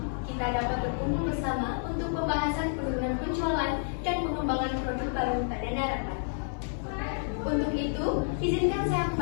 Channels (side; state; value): right; silent; 58 dB below the other